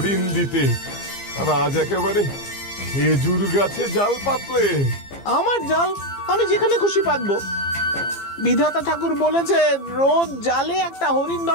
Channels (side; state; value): right; late; 15 ms